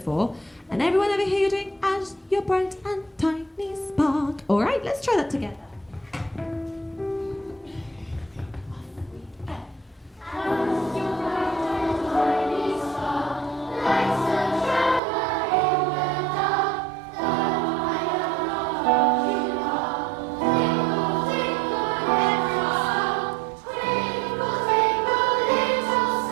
And everyone over here, you're doing As Your Bright and Tiny Spark. All right, let's try that together.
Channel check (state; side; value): drops out; left; at 15.0 s